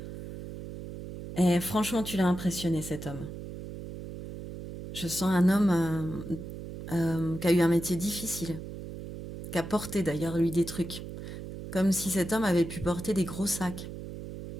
Et franchement, tu l'as impressionné, cet homme. Je sens un homme qui a eu un métier difficile, qui a porté d'ailleurs, lui, des trucs. Comme si cet homme avait pu porter des gros sacs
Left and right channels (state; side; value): noise; right; hum, 10 dB below the sound